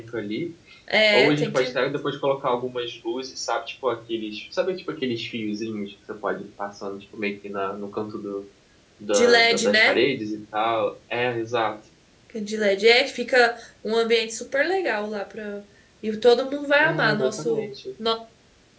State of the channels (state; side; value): identical; both; correlation 1.00